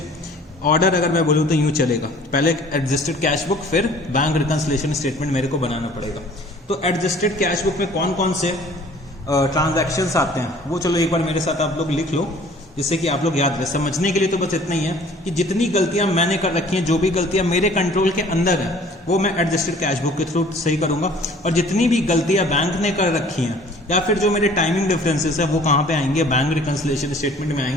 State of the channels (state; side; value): normal; both; correlation 0.52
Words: ऑर्डर अगर मैं बोलूं तो यूं चलेगा, पहले एडजस्टेड कैश बुक फिर बैंक रिकंसिलिएशन स्टेटमेंट मेरे को बनाना पड़ेगा। तो एडजस्टेड कैश बुक में कौन कौन से ट्रांजैक्शंस आते हैं वो चलो एक बार मेरे साथ आप लोग लिख लो, जिससे कि आप लोग याद रहे। समझने के लिए तो बस इतना ही है कि जितनी गलतियां मैंने कर रखी हैं, जो भी गलतियां मेरे कंट्रोल के अंदर है वो मैं एडजस्टेड कैश बुक के थ्रू सही करूंगा। और जितनी भी गलतियां बैंक ने कर रखी हैं या फिर जो मेरे टाइमिंग डिफरेंसेस है वो कहां पे आएंगे, बैंक रिकंसिलिएशन स्टेटमेंट में